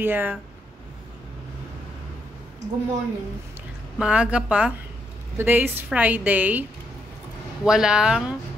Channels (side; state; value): both; normal; correlation 0.77